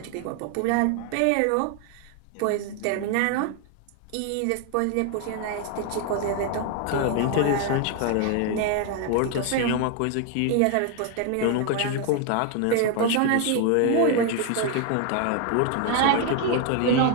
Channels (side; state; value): both; different; correlation 0.00